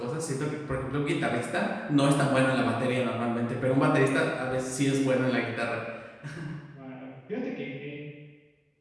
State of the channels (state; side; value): identical; both; correlation 1.00